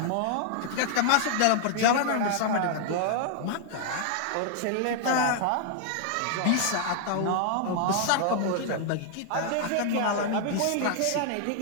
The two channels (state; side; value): different; both; correlation 0.00